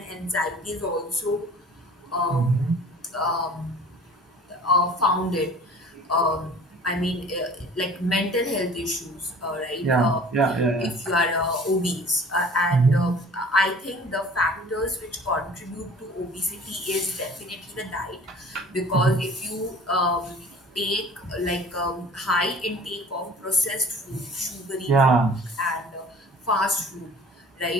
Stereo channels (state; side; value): normal; both; correlation 0.46